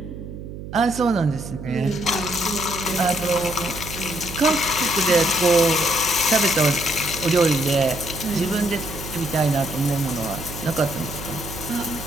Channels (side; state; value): right; noise; hum, 11 dB below the sound